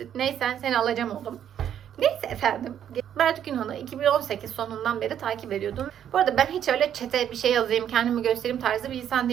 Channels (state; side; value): quieter; left; 9.7 dB